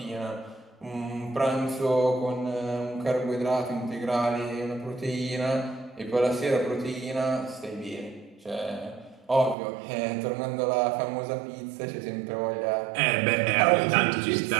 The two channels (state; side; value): drops out; left; at 9.6 s